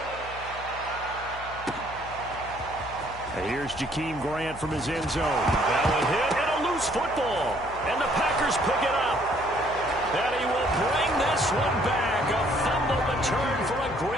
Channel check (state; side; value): noise; left; hum, 15 dB below the sound